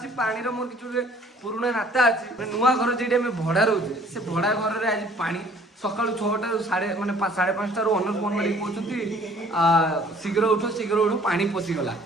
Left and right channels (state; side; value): normal; both; correlation 0.55